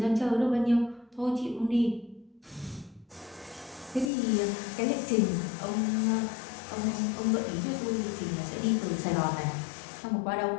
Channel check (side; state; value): right; drops out; at 4.1 s